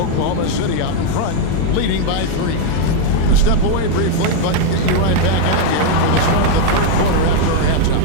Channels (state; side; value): different; both; correlation 0.01